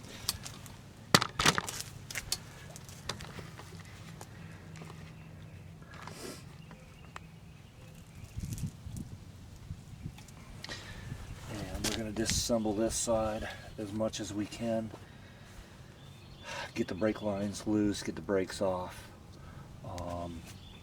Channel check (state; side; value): identical; both; correlation 1.00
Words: And we're going to disassemble this side as much as we can. Get the brake lines loose, get the brakes off,